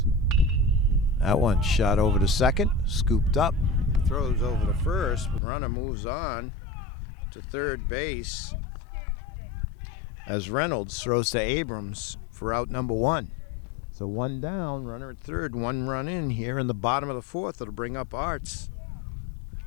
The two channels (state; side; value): drops out; right; at 5.4 s